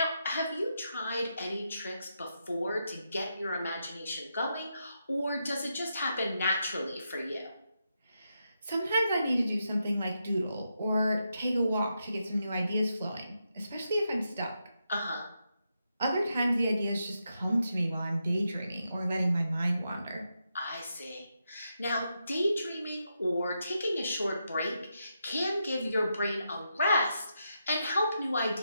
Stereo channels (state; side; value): inverted; both; correlation -0.84